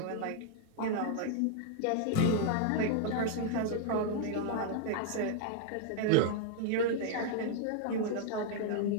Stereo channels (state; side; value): different; both; correlation -0.01